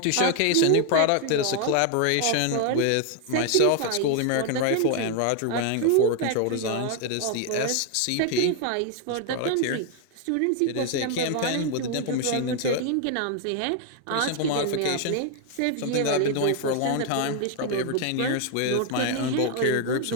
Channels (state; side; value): different; both; correlation 0.00